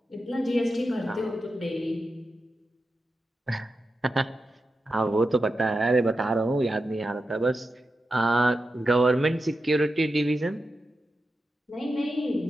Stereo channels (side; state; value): both; normal; correlation 0.90